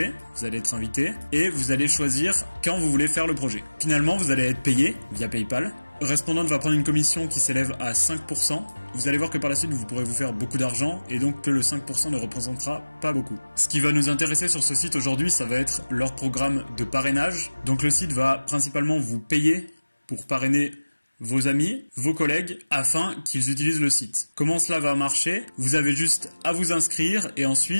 vous allez être invité et vous allez choisir quand vous voulez faire le projet. Finalement, vous allez être payé via PayPal. Respondent va prendre une commission qui s'élève à 5%. Vous allez voir que par la suite, vous pourrez vous faire beaucoup d'argent et donc que le 5% ne représentera pas beaucoup. Ce qui va nous intéresser sur ce site aujourd'hui, ça va être leur programme de parrainage. Donc le site va principalement vous payer pour parrainer vos amis, vos collègues, afin qu'ils utilisent le site. Comment cela va marcher? Vous avez juste à vous inscrire et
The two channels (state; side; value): inverted; both; correlation -1.00